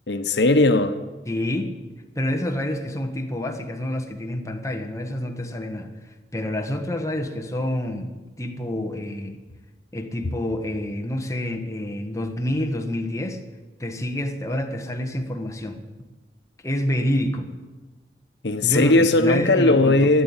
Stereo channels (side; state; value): both; normal; correlation 0.44